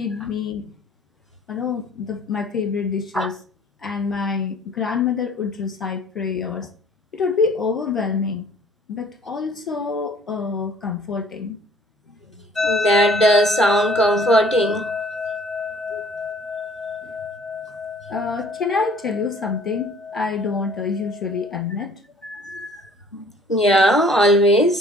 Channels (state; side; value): normal; both; correlation 0.54